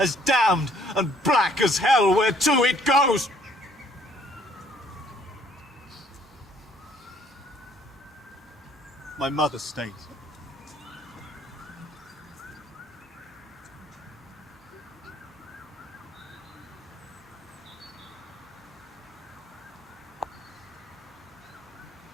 damned and black as hell whereto it goes. My mother stays.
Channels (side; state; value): both; normal; correlation 0.62